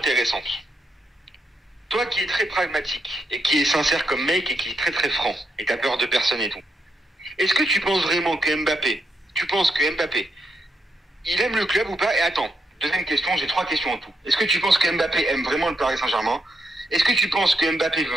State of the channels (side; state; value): both; normal; correlation 0.80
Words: Toi qui es très pragmatique et qui est sincère comme mec et qui est très très franc et t'as peur de personne et tout, est-ce que tu penses vraiment que Mbappé, il aime le club ou pas? Et attends, deuxième question, j'ai 3 questions en tout. Est-ce que tu penses que Mbappé aime vraiment le Paris Saint-Germain? Est-ce que tu penses que Mbappé